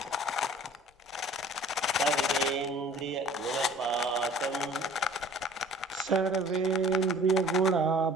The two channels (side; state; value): both; normal; correlation 0.50